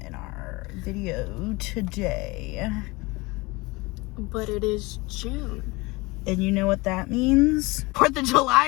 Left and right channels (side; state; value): right; quieter; 23.9 dB